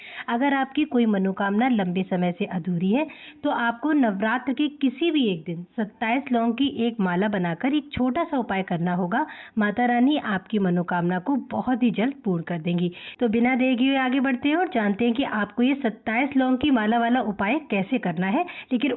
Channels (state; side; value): identical; both; correlation 1.00